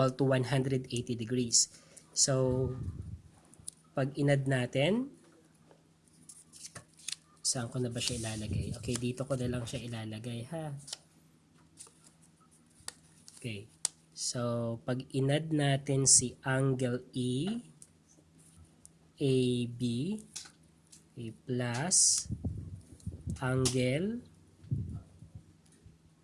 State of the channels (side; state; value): both; identical; correlation 1.00